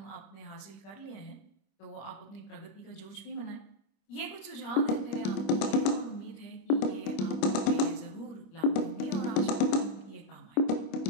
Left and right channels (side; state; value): right; late; 26 ms